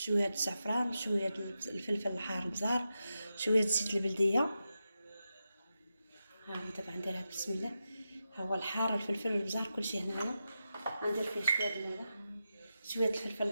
الزعفران، شويه الفلفل الحار البزار، شويه زيت البلديه. ها هو دابا غنديرها بسم الله. ها هو الحار، الفلفل البزار، كلشي هنايا. غندير فيه شويه الفلفل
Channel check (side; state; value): both; inverted; correlation -0.89